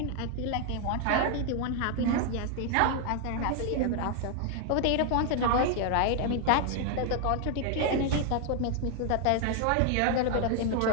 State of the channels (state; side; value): different; both; correlation 0.00